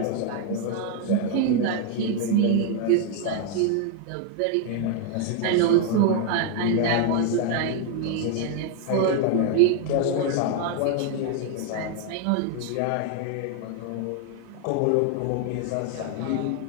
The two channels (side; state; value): both; different; correlation 0.00